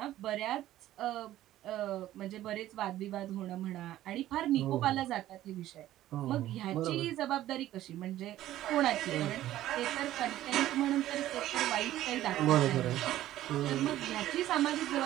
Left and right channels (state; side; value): quieter; left; 13.9 dB